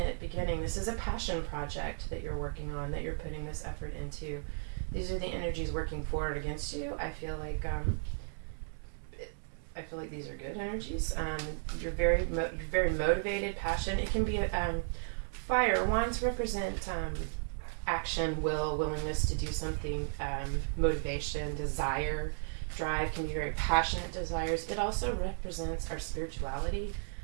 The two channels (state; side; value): silent; left; 55 dB below the other